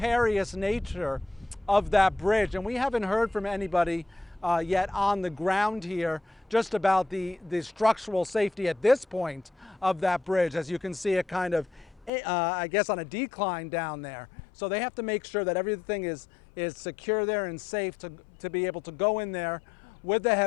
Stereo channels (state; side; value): drops out; right; at 12.1 s